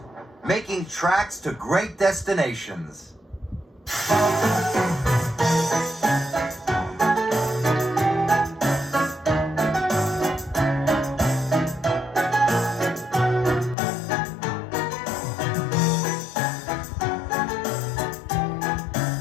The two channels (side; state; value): right; drops out; at 13.8 s